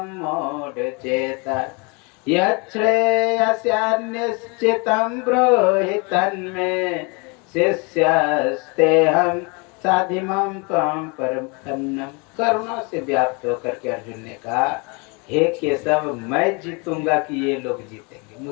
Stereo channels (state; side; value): quieter; right; 31.1 dB